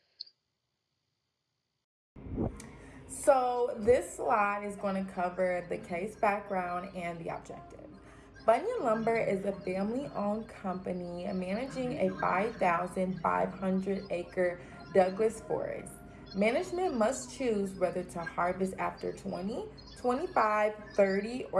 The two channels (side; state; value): both; identical; correlation 1.00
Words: So this slide is going to cover the case background and the objective. Bunyan Lumber is a family-owned company managing a 5,500-acre Douglas forest. Management must choose whether to harvest after 20, 25, 30,